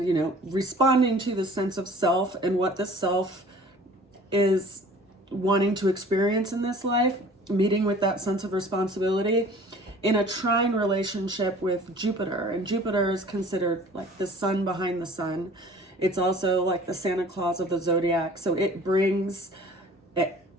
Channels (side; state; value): both; normal; correlation 0.48